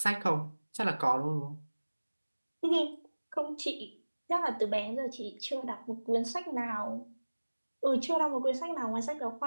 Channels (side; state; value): both; inverted; correlation -1.00